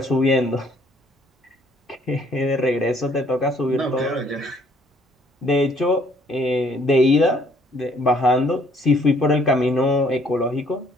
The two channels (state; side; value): normal; both; correlation 0.63